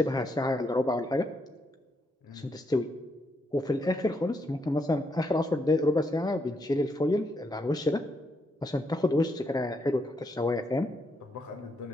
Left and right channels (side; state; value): both; normal; correlation 0.78